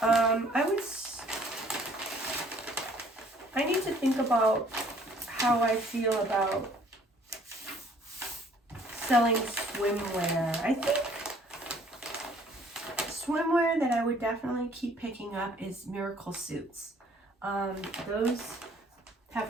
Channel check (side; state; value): both; normal; correlation 0.58